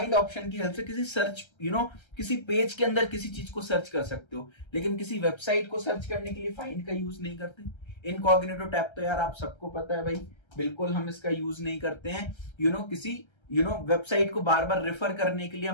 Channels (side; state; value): right; late; 1.3 ms